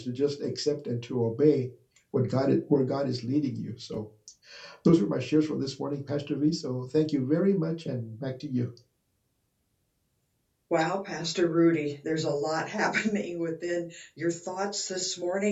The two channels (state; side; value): identical; both; correlation 1.00